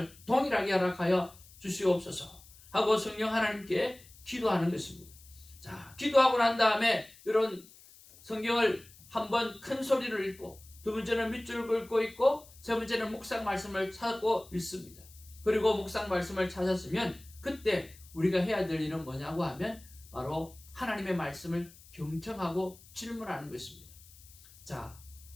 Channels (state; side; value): noise; left; hiss, 23 dB below the sound